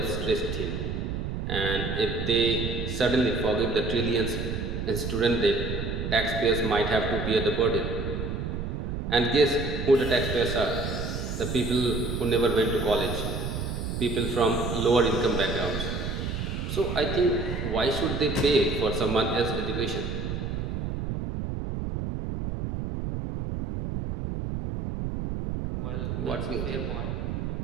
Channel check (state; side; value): noise; right; rumble, 3 dB below the sound